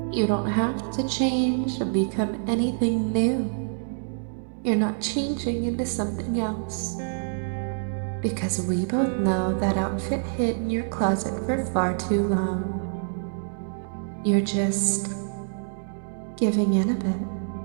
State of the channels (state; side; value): silent; left; digital silence